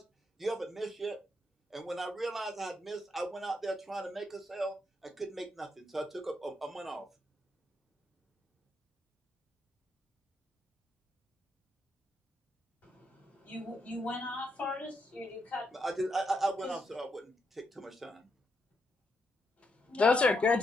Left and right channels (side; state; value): both; normal; correlation 0.80